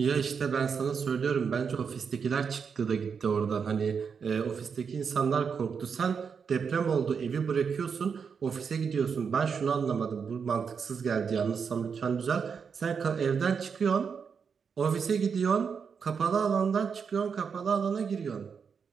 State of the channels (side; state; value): left; quieter; 6.2 dB